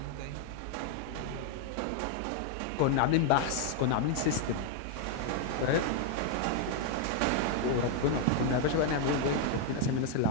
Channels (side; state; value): both; different; correlation 0.00